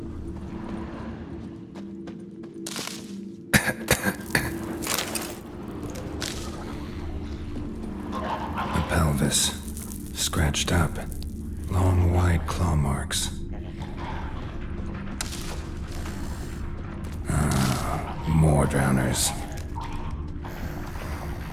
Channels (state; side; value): identical; both; correlation 1.00